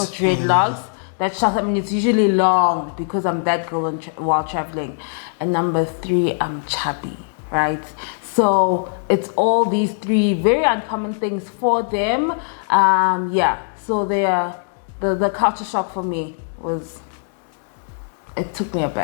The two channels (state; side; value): silent; right; 65 dB below the other